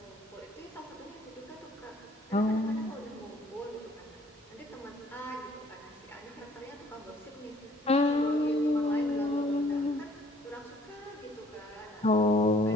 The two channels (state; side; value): normal; both; correlation 0.59